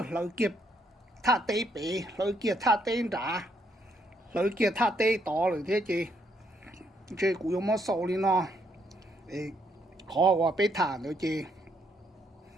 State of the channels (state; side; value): normal; both; correlation 0.73